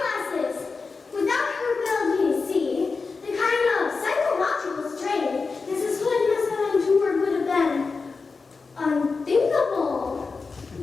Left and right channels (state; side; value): quieter; right; 4.4 dB